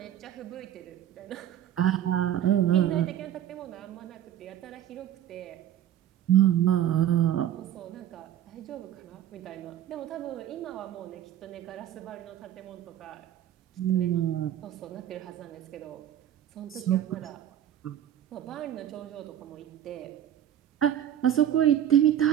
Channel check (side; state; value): left; quieter; 10.9 dB